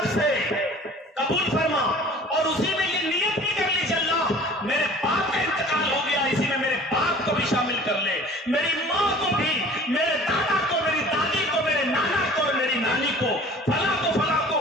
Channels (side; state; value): both; normal; correlation 0.46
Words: سے قبول فرما، اور اسی میں یہ نیت بھی کر لیجیے اللہ میرے باپ کا انتقال ہو گیا، اسی میں میرے باپ کو بھی شامل کر لے، میری ماں کو بھی، میرے دادا کو، میری دادی کو، میرے نانا کو اور میری نانی کو، فلاں کو،